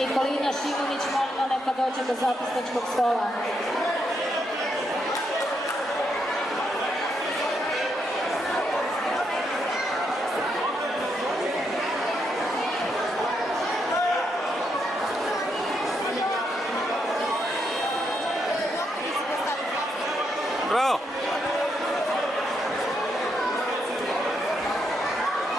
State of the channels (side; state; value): both; normal; correlation 0.79